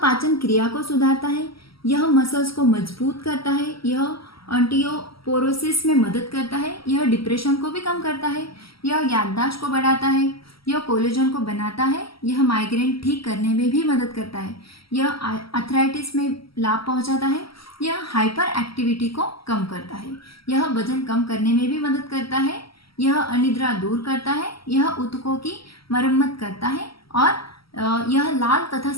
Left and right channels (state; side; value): late; right; 0.75 ms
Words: क्रिया को सुधारता है, यह मसल्स को मजबूत करता है, यह ऑस्टियोपोरोसिस में मदद करता है, यह डिप्रेशन को भी कम करता है, यह याददाश्त को बढ़ाता है, यह कोलेजन को बनाता है, यह माइग्रेन ठीक करने में भी मदद करता है, यह आर्थराइटिस में लाभ पहुंचाता है, यह हाइपर एक्टिविटी को कम करता है, यह वजन कम करने में भी मदद करता है, यह अनिद्रा दूर करता है, यह ऊतकों की मरम्मत करता है और यह लाल तथा